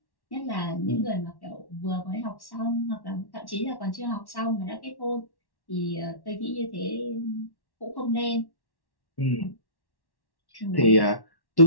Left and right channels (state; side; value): late; right; 1.1 ms